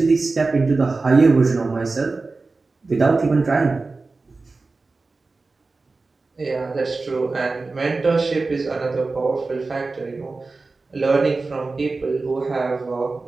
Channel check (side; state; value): left; quieter; 3.7 dB